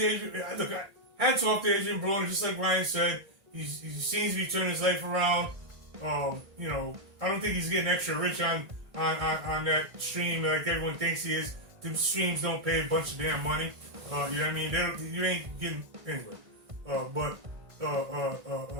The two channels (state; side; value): late; left; 1.6 ms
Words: look, hats off to Adrien Broner, just like Ryan said. He seems to be turning his life around. I don't think he's getting extra rich on that stream like everyone thinks he is. The streams don't pay a bunch of damn money. You know what I mean? You ain't getting anyway.